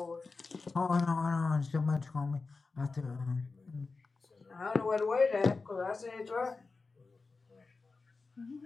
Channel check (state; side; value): quieter; right; 4.1 dB